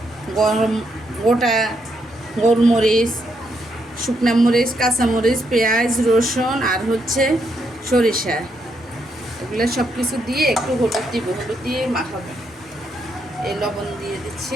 গোটা গোলমরিচ, শুকনা মরিচ, কাঁচামরিচ, পেঁয়াজ, রসুন আর হচ্ছে সরিষা, এগুলো সব কিছু দিয়ে একটু হলুদ দিব, হলুদ দিয়ে মাখাবো। এই লবণ দিয়ে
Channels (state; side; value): normal; both; correlation 0.78